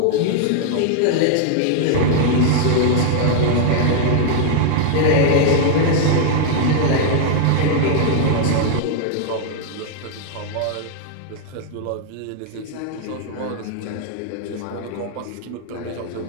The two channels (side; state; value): both; different; correlation 0.00